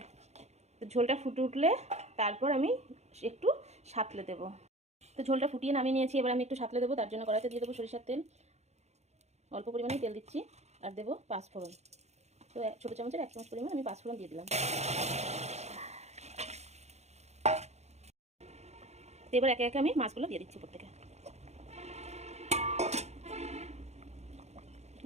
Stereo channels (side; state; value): left; late; 0.32 ms